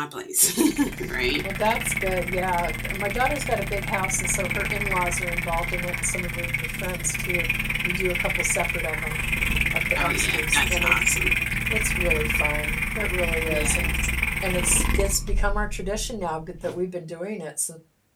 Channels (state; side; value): identical; both; correlation 1.00